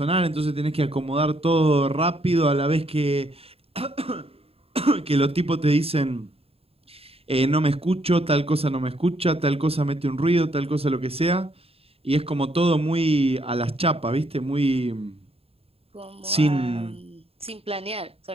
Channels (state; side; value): late; left; 0.28 ms